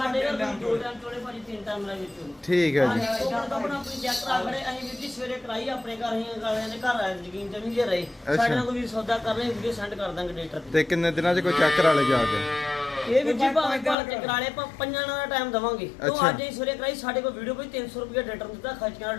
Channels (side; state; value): right; drops out; at 14.0 s